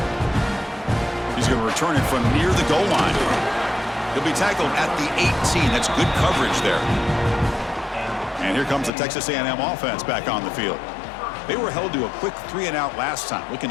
He's going to return it from near the goal line. He'll be tackled at the 18. That's good coverage there. And here comes the Texas A&M offense back on the field. They were held to a quick 3-and-out last time, looking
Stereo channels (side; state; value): right; drops out; at 8.9 s